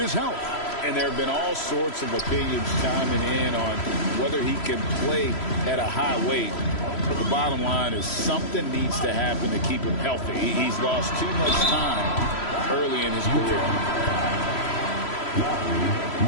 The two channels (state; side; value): late; right; 3.0 ms